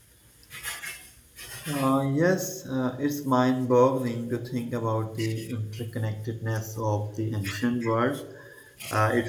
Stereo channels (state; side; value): identical; both; correlation 1.00